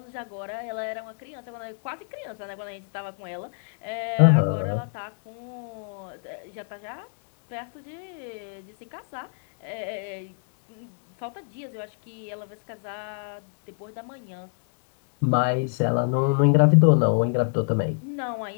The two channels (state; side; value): silent; right; digital silence